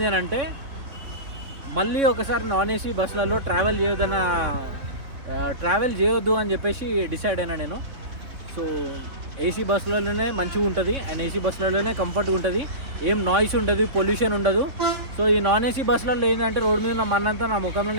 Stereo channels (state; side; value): late; left; 3.6 ms